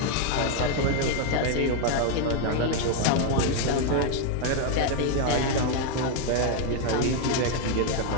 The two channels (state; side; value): different; both; correlation 0.01